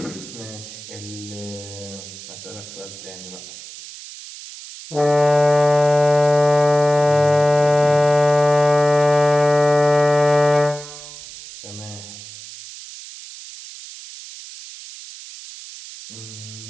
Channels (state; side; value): noise; right; hiss, 15 dB below the sound